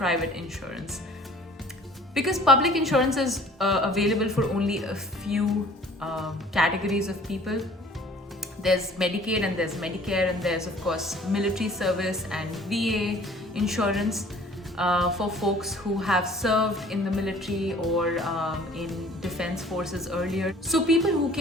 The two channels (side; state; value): both; normal; correlation 0.51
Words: insurance because public insurance is available for only a few categories of people. There's Medicaid and there's Medicare, and there's of course military service and VA insurance. For folks who have served in the military or in defense forces earlier. So people who